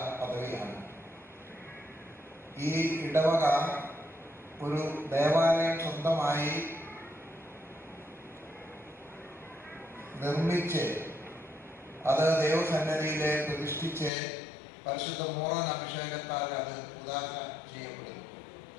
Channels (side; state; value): right; drops out; at 14.1 s